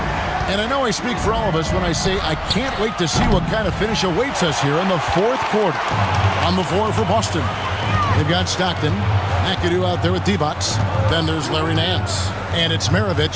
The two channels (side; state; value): both; identical; correlation 1.00